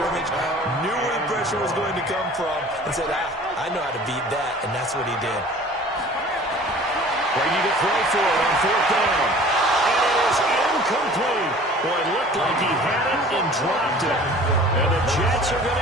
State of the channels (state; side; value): normal; both; correlation 0.46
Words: knew where the pressure was going to come from, and said, I know how to beat that, and that's what he did. Brady to throw for it on fourth down. And it is incomplete. Boy, it looked like he had it and dropped it. And the Jets are going